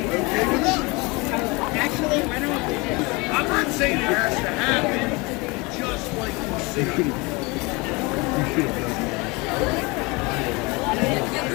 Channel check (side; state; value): right; quieter; 26.2 dB